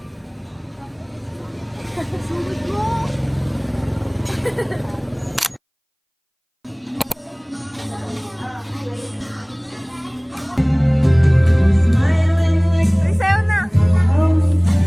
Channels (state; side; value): identical; both; correlation 1.00